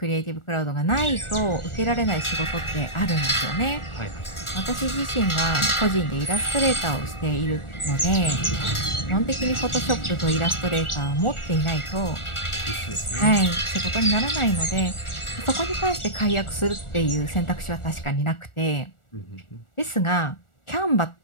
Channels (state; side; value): late; right; 1.4 ms